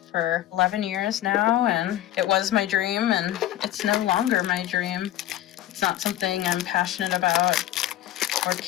11 years now, and it was my dream, and it's no longer my dream. It's not something I'm passionate about or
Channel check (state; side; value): quieter; right; 13.4 dB